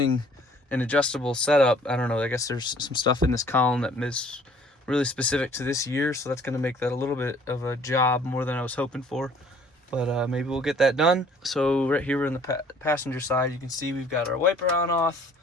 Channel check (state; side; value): normal; both; correlation 0.56